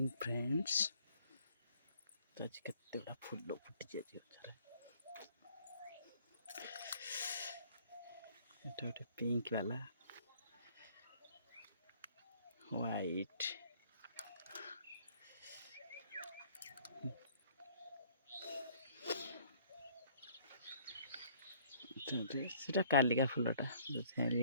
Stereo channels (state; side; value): inverted; both; correlation -0.58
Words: friends. तो आज केते बड़ा फूल फुटी जाए गोटे पिंक वाला व्हाइट सेटा कालिका फूलटा